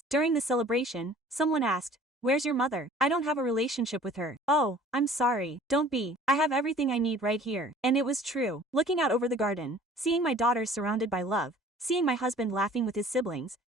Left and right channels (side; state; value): both; normal; correlation 0.50